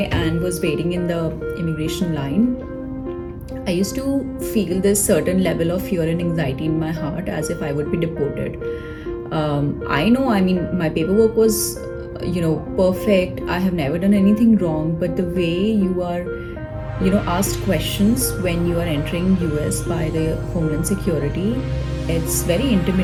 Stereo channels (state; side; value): identical; both; correlation 1.00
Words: and was waiting in the immigration line, I used to feel this certain level of fear and anxiety in my heart as if I would be deported. I mean, my paperwork was, perfect. I have never done anything wrong, but the way you are, asked questions when you are entering US by the Homeland Security, it's very